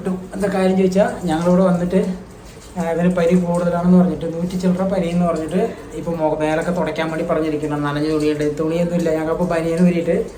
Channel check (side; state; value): both; identical; correlation 1.00